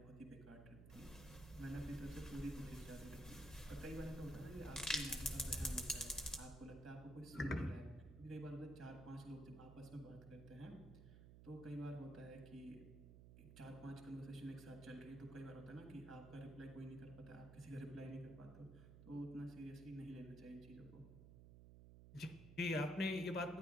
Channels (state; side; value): noise; right; hum, 13 dB below the sound